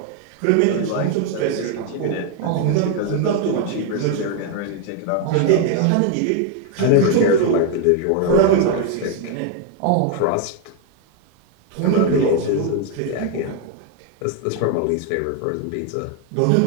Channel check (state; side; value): different; both; correlation 0.01